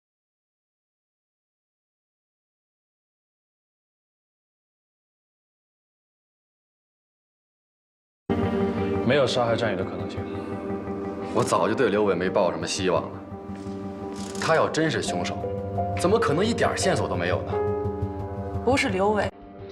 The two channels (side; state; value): both; identical; correlation 1.00